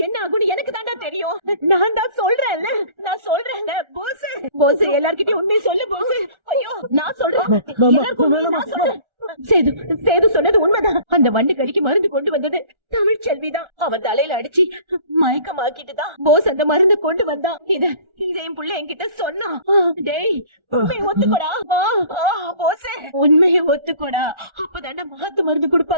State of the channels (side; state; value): left; late; 1.4 ms